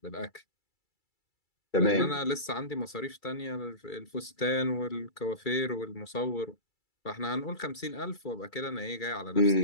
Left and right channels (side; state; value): right; late; 2.3 ms